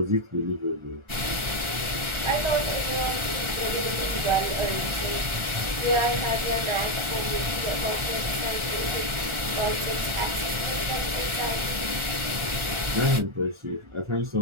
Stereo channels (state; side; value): late; left; 1.4 ms